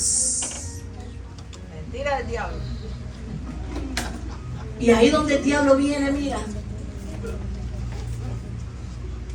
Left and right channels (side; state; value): both; identical; correlation 1.00